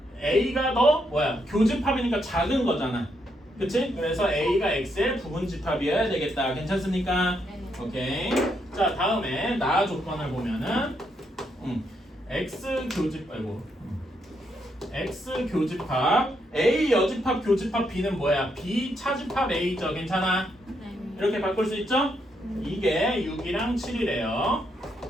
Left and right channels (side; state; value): both; normal; correlation 0.77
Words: A가 더 뭐야? 교집합이니까 작은 거잖아. 그치? 그래서 A가 X의 부분집합이어야 되겠다. 괜찮습니까? 네. 오케이. 자, 다음에 나 조건을 보면은 X 교집합 A 여집합 교집합 B는 뭐야? B 차집합 A죠. 괜찮아? 네. 이렇게 바꿀 수 있죠? 이게 6이랑 7이래요.